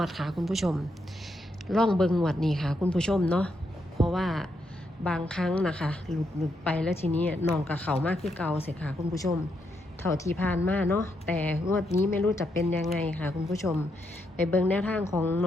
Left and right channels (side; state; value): both; normal; correlation 0.80